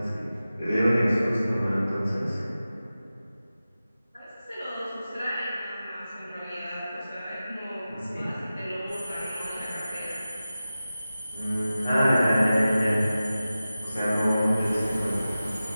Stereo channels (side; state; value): both; inverted; correlation -0.94